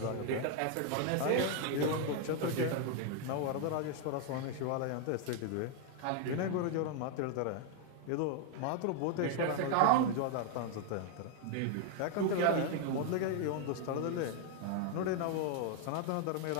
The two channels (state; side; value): different; both; correlation 0.00